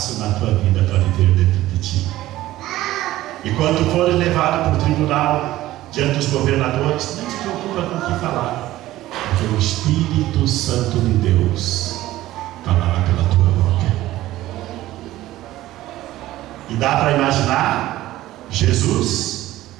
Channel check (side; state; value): left; quieter; 15.6 dB